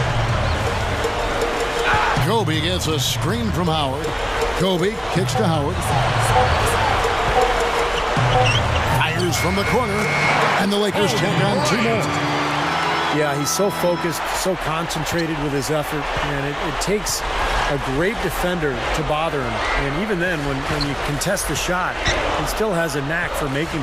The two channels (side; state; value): both; identical; correlation 1.00